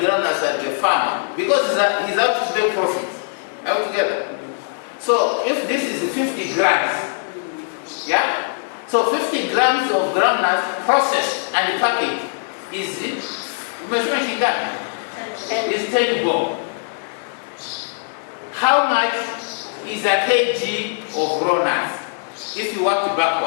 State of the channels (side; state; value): right; silent; 63 dB below the other